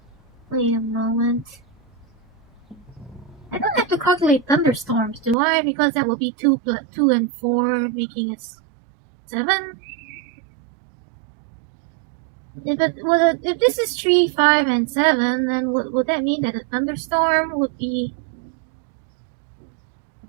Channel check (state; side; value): drops out; left; at 5.4 s